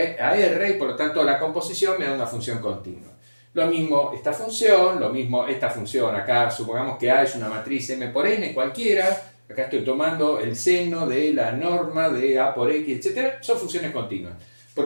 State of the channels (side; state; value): both; inverted; correlation -1.00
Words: a r y por lo tanto la composición me da una función continua. Lo mismo esta función, lo mismo esta función. Acá supongamos que A es una matriz M por N cualquiera. Acá estoy tomando el seno de la norma de A por X, etc. Son funciones continuas.